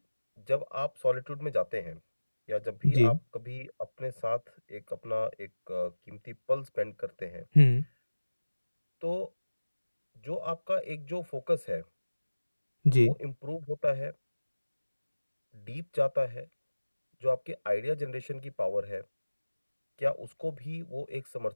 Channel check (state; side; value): inverted; both; correlation -1.00